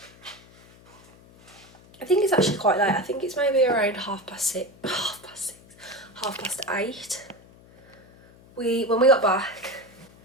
I think it's actually quite late. I think it's maybe around half past 8. When we got back,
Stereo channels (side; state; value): left; noise; hum, 25 dB below the sound